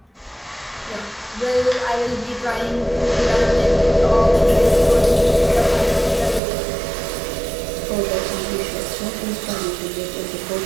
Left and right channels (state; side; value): drops out; left; at 6.4 s